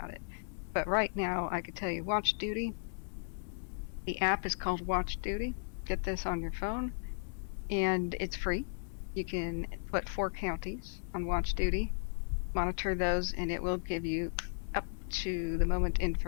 it. But right now, I could tell you Watch Duty. The app is called Watch Duty. Get this on your phone, and it's free. You can put 4 counties on Watch Duty, monitor those, and it will give you up to the moment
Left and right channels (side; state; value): right; silent; digital silence